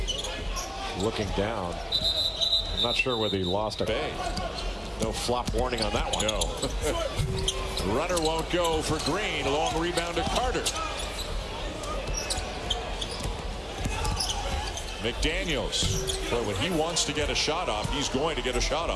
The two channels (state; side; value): identical; both; correlation 1.00